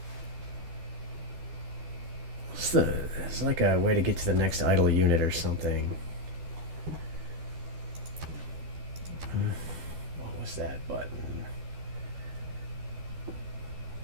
There's like a way to get to the next idle unit or something. What was that button?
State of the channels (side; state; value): left; late; 12 ms